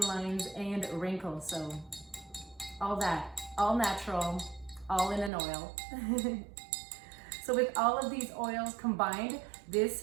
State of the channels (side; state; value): left; drops out; at 5.3 s